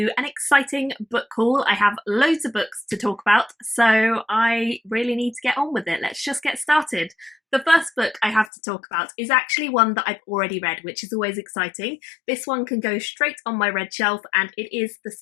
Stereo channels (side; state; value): right; drops out; at 8.5 s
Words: an exciting book haul. I have loads of books to talk about, so I really need to get on with it. Let's just get started. The first book I have to talk about is actually one that I've already read, which is always exciting. This one can go straight on my read shelf, and it is The